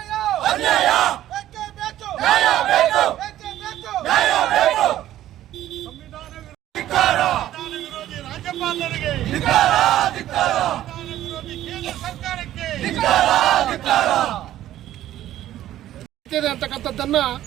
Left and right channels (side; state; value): left; quieter; 13.1 dB